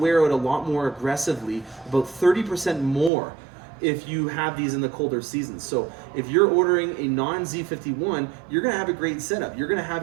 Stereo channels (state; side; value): drops out; left; at 3.1 s